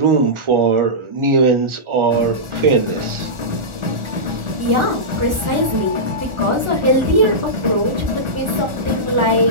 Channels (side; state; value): left; late; 1.4 ms